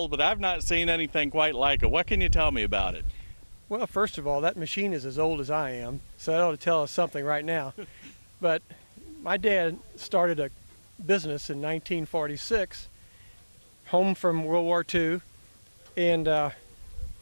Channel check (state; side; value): inverted; both; correlation -1.00